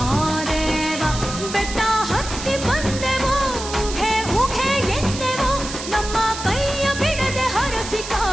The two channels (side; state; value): right; noise; hiss, 9 dB below the sound